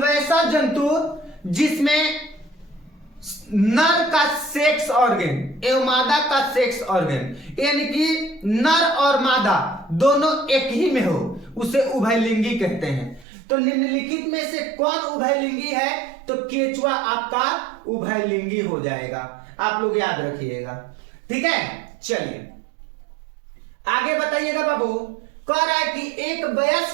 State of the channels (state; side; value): drops out; left; at 13.2 s